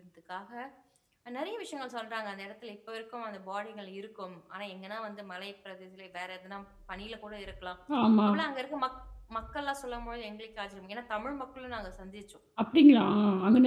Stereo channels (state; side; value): identical; both; correlation 1.00